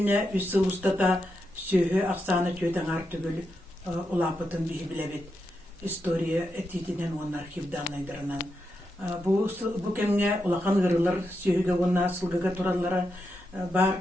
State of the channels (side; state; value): both; normal; correlation 0.85